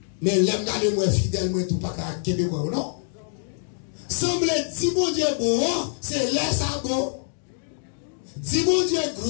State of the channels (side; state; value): right; silent; digital silence